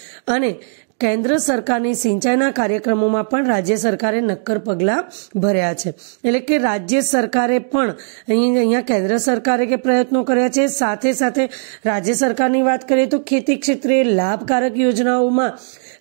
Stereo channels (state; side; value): silent; left; 59 dB below the other